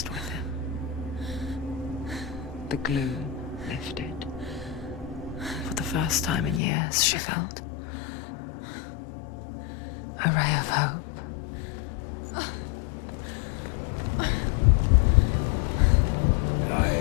with him. The gloom lifted. For the first time in years, she felt a ray of hope.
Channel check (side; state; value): right; drops out; at 6.6 s